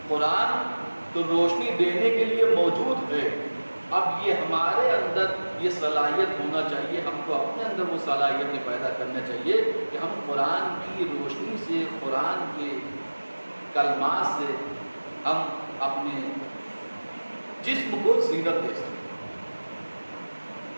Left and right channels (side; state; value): both; inverted; correlation -1.00